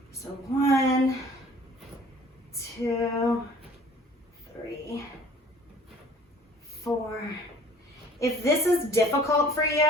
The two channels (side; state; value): both; normal; correlation 0.52